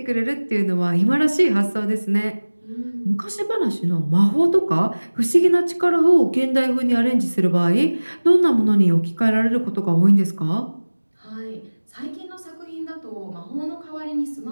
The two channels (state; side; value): inverted; both; correlation -1.00